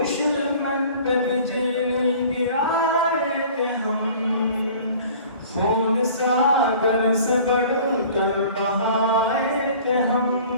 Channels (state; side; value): inverted; both; correlation -0.47